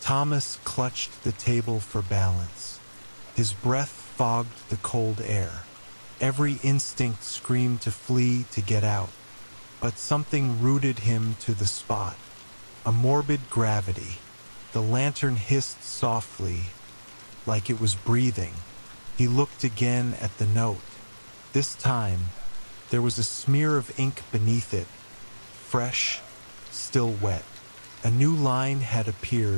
Thomas clutched the table for balance. His breath fogged the cold air. Every instinct screamed to flee, to get out. But something rooted him to the spot. A morbid gravity. The lantern hissed softly, like it was breathing. He looked again at the note. This time, there was a smear of ink beneath it, fresh, still wet. A new line had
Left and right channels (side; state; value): both; inverted; correlation -1.00